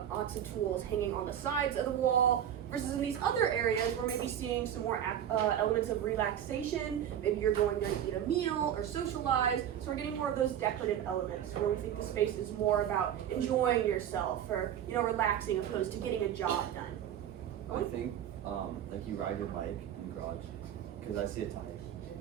lots of tools hanging on the sides of the wall. Versus in these other areas, we're maybe seeing some more elements of relaxation. Maybe you're going to eat a meal or socialize. So we're getting more of those decorative elements where we think the space is more about enjoying yourself or relaxing opposed to getting a job done. I think like you ride your bike in the garage because I see a tire.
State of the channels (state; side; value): quieter; left; 10.1 dB